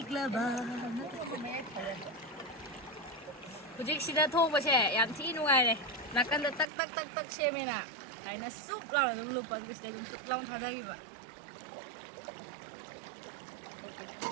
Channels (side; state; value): left; drops out; at 6.7 s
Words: ba hujik sida thong ba se yam thi nuai le nakan da tak tak tak tak se me na ai na sup la dum lu pan ke sida dum sup long tha da gi ba